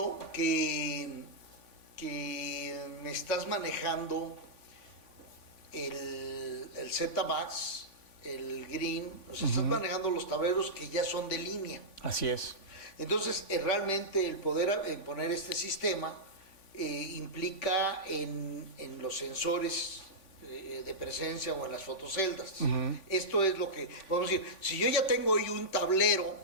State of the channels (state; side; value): late; right; 3.5 ms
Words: que me estás manejando el Z-Max, el Green, o sea, estás manejando los tableros que ya son de línea. Así es. Entonces, realmente el poder poner este sistema implica en los sensores de presencia o en las fotoceldas. Esto es lo que podemos decir. Si yo ya tengo hoy un tablero,